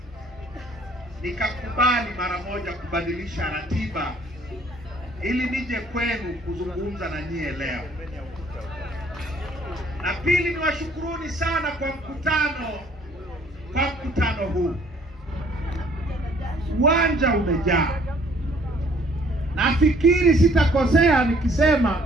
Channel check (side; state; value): both; normal; correlation 0.59